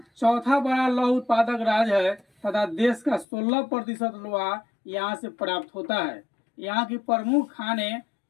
चौथा बड़ा लौह उत्पादक राज्य है तथा देश का 16% लोहा यहाँ से प्राप्त होता है। यहाँ की प्रमुख खाने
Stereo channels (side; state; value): right; drops out; at 3.2 s